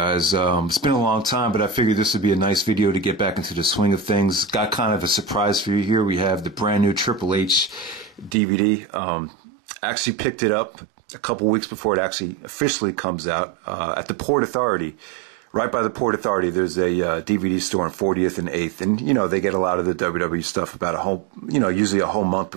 It's been a long time, but I figured this would be a nice video to get back into the swing of things. Got kind of a surprise for you here. We have the brand new Triple H DVD. Actually picked it up a couple weeks before it actually officially comes out at the Port Authority. Right by the Port Authority, there's a DVD store on 40th and 8th. And, you know, they get a lot of the WWE stuff about a whole, usually a whole month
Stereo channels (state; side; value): drops out; left; at 8.3 s